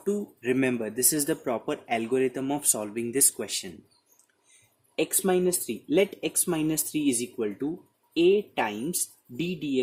to remember? This is the proper algorithm of solving this question. X minus 3, let x minus 3 is equal to a times d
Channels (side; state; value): both; identical; correlation 1.00